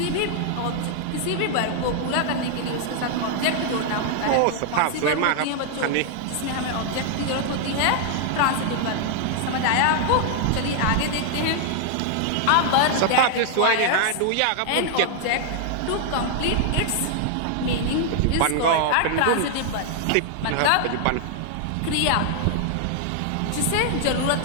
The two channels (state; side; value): different; both; correlation 0.00